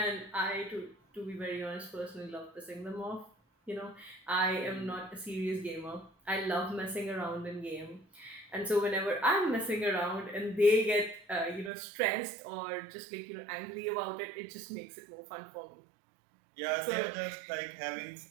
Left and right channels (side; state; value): left; drops out; at 11.7 s